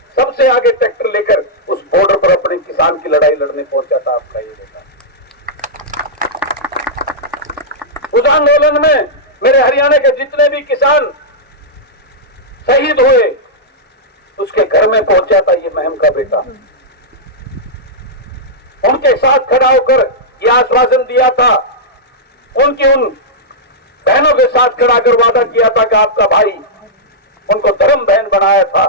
सबसे आगे ट्रैक्टर लेकर उस बॉर्डर पर अपने किसान की लड़ाई लड़ने पहुंचा था आपका ये बेटा। उस आंदोलन में मेरे हरियाणा के जितने भी किसान शहीद हुए, उसके घर में पहुंचा था ये महम का बेटा। उनके साथ खड़ा होकर यह आश्वासन दिया था, उनकी उन बहनों के साथ खड़ा कर वादा किया था कि आपका भाई, उनको धर्म बहन बनाया था।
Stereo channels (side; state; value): both; normal; correlation -0.10